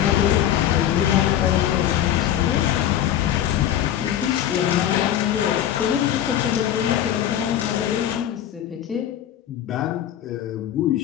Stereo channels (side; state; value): right; quieter; 11.0 dB